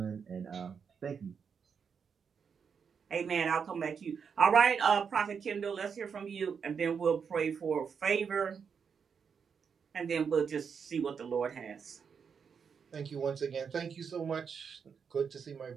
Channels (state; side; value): quieter; left; 6.5 dB